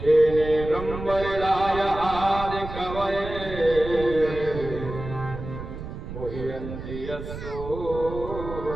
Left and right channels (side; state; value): right; noise; rumble, 9 dB below the sound